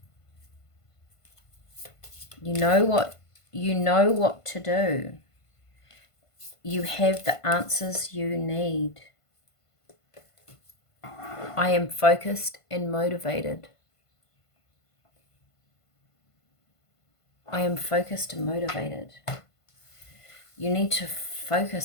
You know what to do. You have the answers you need. I am focused and motivated. I am focused and motivated. You need to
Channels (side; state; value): right; late; 1.5 ms